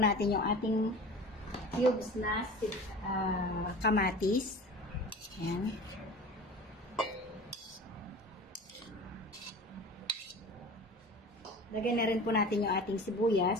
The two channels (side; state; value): both; normal; correlation 0.38